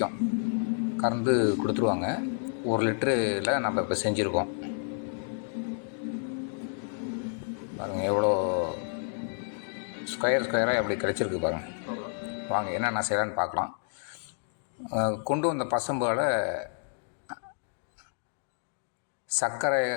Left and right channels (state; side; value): silent; right; digital silence